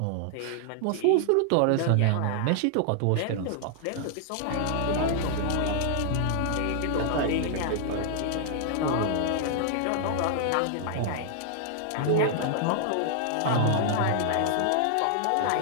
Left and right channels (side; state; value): both; different; correlation 0.00